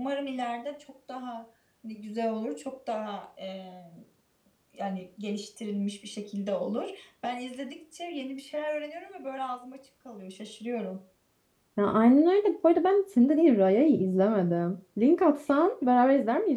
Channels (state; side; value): identical; both; correlation 1.00